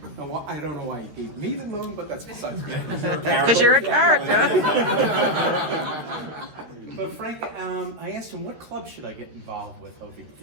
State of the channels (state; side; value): late; left; 13 ms